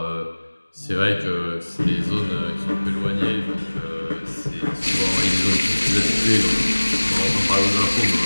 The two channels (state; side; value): inverted; both; correlation -1.00